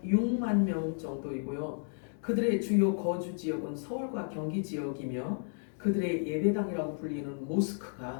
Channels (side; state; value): right; silent; 56 dB below the other